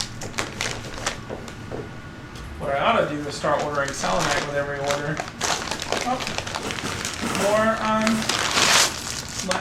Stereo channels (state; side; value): identical; both; correlation 1.00